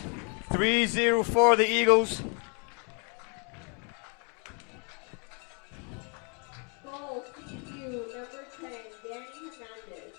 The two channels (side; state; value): right; quieter; 36.7 dB